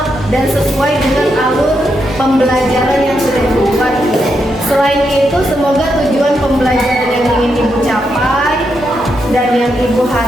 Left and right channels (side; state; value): both; normal; correlation 0.82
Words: dan sesuai dengan alur pembelajaran yang sudah Ibu buat. Selain itu, semoga tujuan pembelajaran yang ingin Ibu capai dan yang Ibu